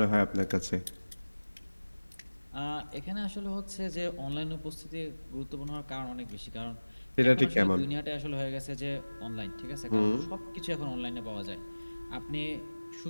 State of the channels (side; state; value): both; inverted; correlation -1.00